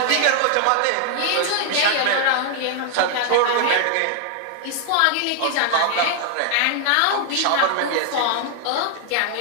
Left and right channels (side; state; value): both; different; correlation 0.00